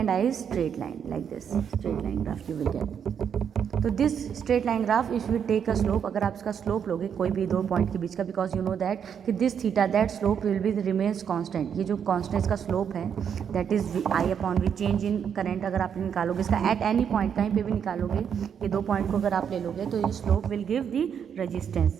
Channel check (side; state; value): left; quieter; 7.8 dB